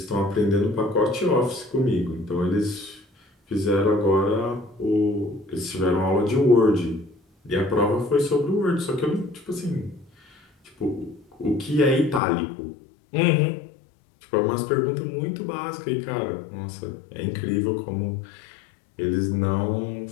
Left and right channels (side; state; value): right; drops out; at 12.2 s